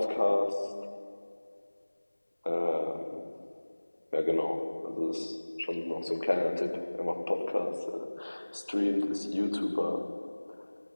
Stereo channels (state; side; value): inverted; both; correlation -1.00